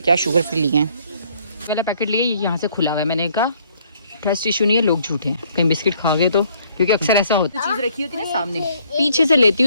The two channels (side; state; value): both; inverted; correlation -0.64